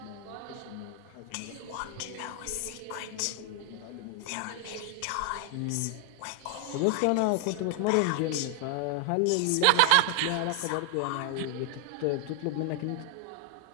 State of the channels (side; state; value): both; different; correlation 0.00